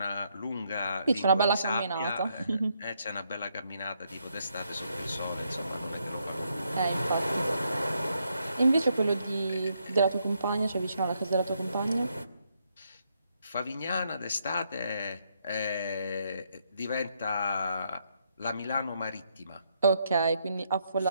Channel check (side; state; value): both; inverted; correlation -0.76